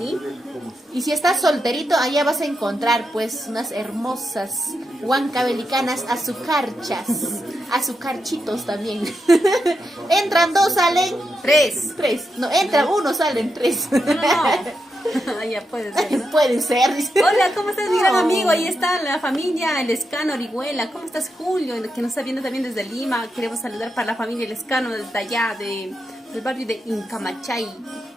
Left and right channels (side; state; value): both; normal; correlation 0.85